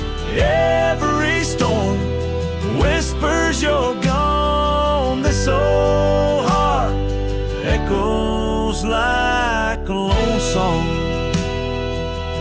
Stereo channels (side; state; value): both; identical; correlation 1.00